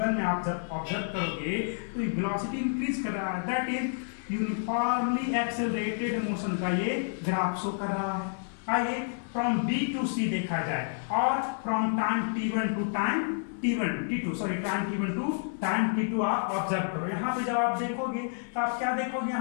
में आप जब ऑब्जर्व करोगे तो वेलोसिटी इंक्रीज कर रहा है, that is uniformly accelerated motion का ये ग्राफ शो कर रहा है. आइए फ्रॉम B टू C देखा जाए, और from time t1 to time t2 sorry time t1 to time t2 आप ऑब्जर्व करो. यहाँ पे जब आप देखोगे तो आप क्या देखोगे,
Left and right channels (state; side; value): silent; right; 56 dB below the other